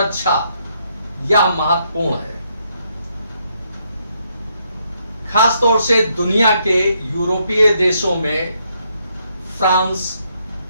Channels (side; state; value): both; inverted; correlation -0.75